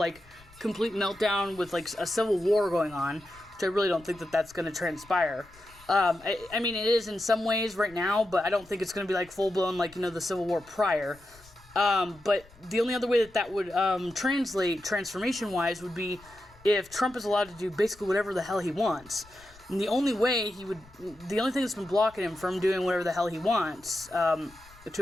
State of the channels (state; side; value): noise; left; rumble, 25 dB below the sound